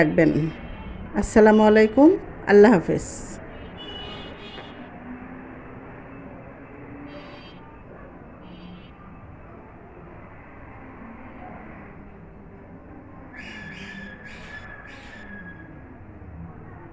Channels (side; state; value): both; identical; correlation 1.00